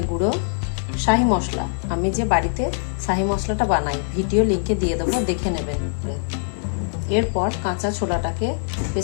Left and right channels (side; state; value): right; silent; 56 dB below the other